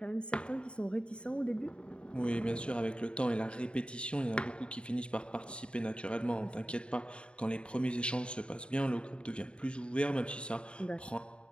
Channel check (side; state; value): right; late; 0.055 ms